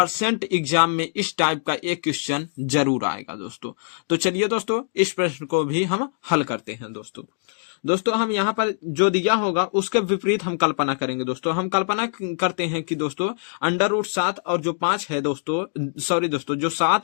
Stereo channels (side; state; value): right; silent; digital silence